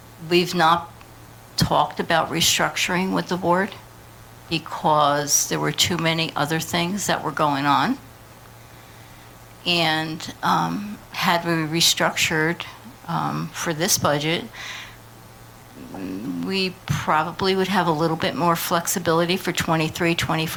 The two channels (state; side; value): identical; both; correlation 1.00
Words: We've not talked about restructuring with the board because there were too many other things that were going on. And had we restructured for this budget, we probably would have a little bit more flexibility for 23,